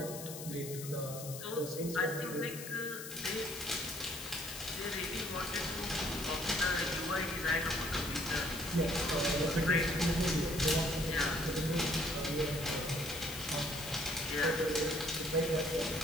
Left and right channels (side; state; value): left; noise; hiss, 10 dB below the sound